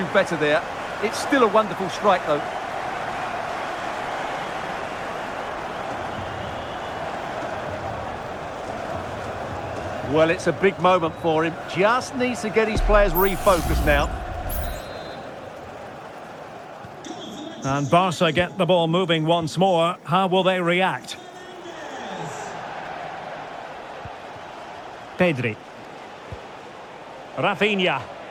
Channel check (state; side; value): identical; both; correlation 1.00